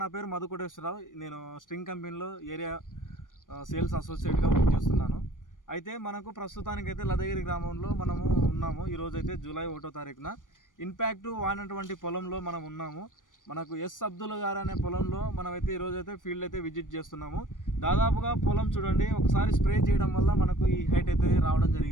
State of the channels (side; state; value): right; late; 0.88 ms